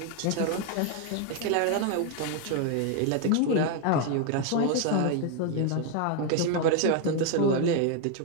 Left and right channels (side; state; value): both; different; correlation 0.01